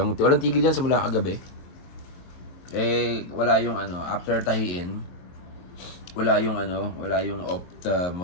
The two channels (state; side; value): late; right; 23 ms